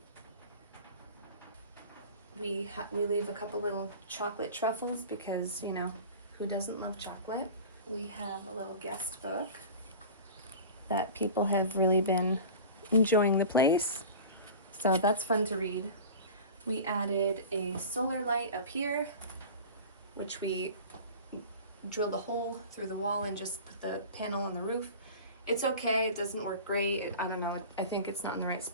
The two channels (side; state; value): both; inverted; correlation -0.36